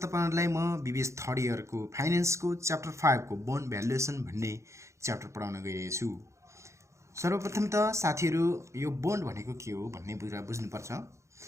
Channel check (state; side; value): late; left; 0.14 ms